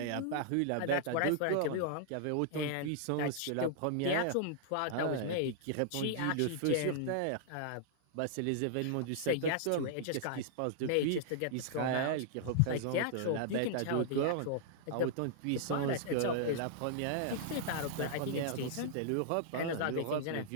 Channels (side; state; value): both; different; correlation -0.01